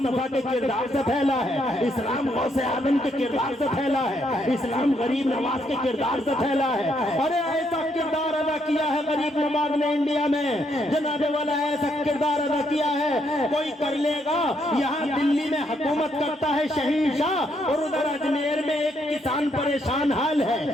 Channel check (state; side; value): normal; both; correlation 0.74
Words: के किरदार से फैला है। इस्लाम गौसे आदम के किरदार से फैला है। इस्लाम गरीब नवाज के किरदार से फैला है। अरे ऐसा किरदार अदा किया है गरीब नवाज ने इंडिया में, जनाबे वाला ऐसा किरदार अदा किया है कोई कर लेगा। यहाँ दिल्ली में हुकूमत करता है शहंशाह, और उधर अजमेर में एक किसान परेशान हाल है।